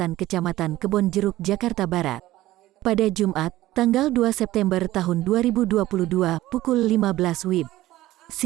Kecamatan Kebon Jeruk, Jakarta Barat. Pada Jumat, tanggal 2 September tahun 2022 pukul 15 WIB.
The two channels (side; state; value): left; quieter; 15.9 dB